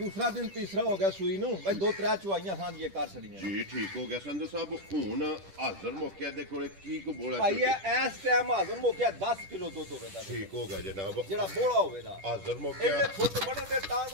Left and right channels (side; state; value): left; late; 10 ms